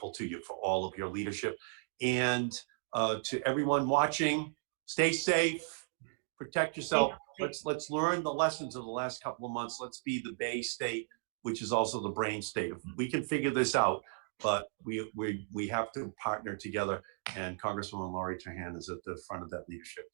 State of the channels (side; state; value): left; silent; digital silence